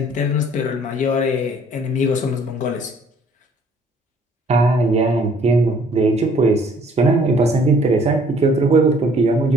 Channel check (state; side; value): normal; both; correlation 0.58